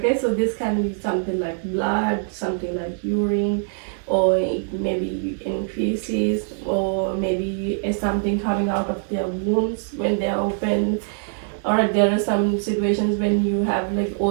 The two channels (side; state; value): left; silent; 63 dB below the other